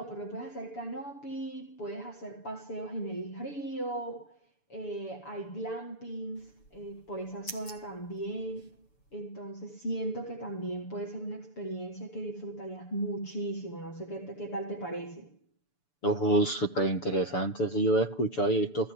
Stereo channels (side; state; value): right; late; 6.9 ms